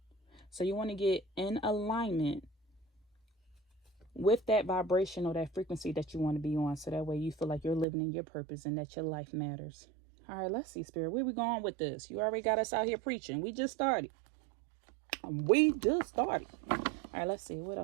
So you want to get in alignment with that vibration or that frequency that you want to be on, so that way you feel like you're living in your purpose and that your life matters. All right, let's see, Spirit. Where we going with this? You already got us out here preaching. We just started. All right, let's see what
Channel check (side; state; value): left; drops out; at 7.9 s